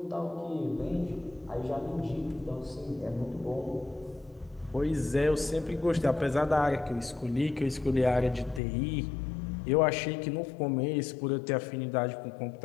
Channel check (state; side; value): drops out; right; at 8.6 s